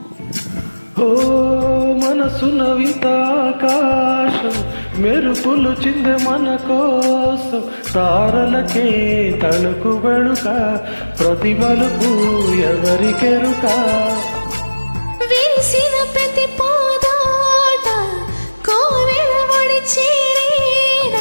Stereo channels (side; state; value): both; inverted; correlation -1.00